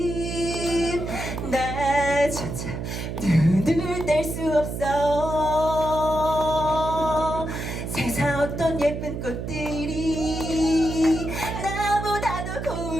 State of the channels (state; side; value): noise; right; hum, 5 dB below the sound